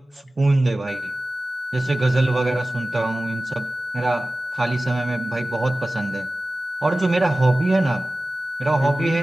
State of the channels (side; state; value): both; normal; correlation 0.97